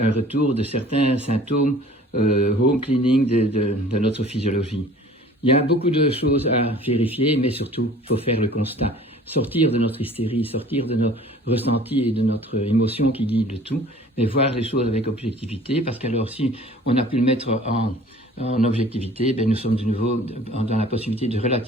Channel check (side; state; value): both; normal; correlation 0.49